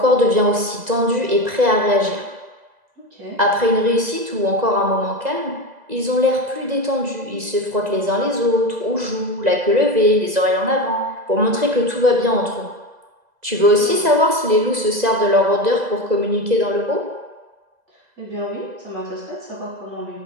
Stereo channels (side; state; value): left; late; 2.0 ms